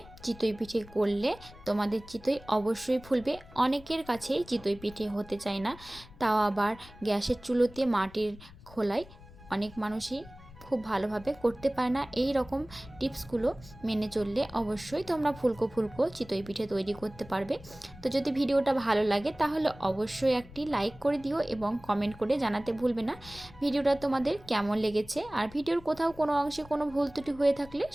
চিতই পিঠে করলে তোমাদের চিতই অবশ্যই ফুলবে। অনেকের কাছেই চিতই পিঠে হতে চায় না, তাও আবার গ্যাসের চুলোতে মাটির খোলায় অনেক মানুষই খুব ভালোভাবে করতে পারে না। এই রকম টিপসগুলো মেনে চললে অবশ্যই তোমরা ফুলকো ফুলকো চিতই পিঠে তৈরি করতে পারবে। তো যদি ভিডিওটা ভালো লাগে তাহলে অবশ্যই একটি লাইক করে দিও এবং কমেন্ট করে জানাতে ভুলবে না ভিডিওটা তোমাদের কেমন লেগেছে। আর ভিডিওর কোথাও কোনো অংশে কোনো ভুল ত্রুটি হয়ে থাকলে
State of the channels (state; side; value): noise; left; rumble, 20 dB below the sound